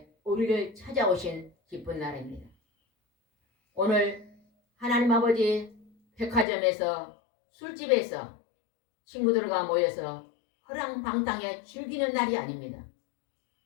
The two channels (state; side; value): drops out; right; at 6.5 s